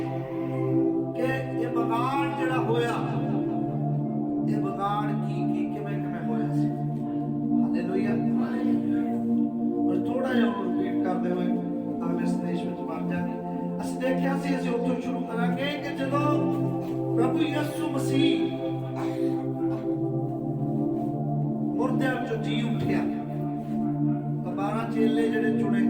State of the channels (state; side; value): identical; both; correlation 1.00